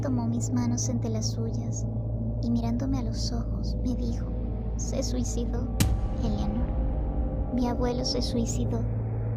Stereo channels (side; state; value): both; identical; correlation 1.00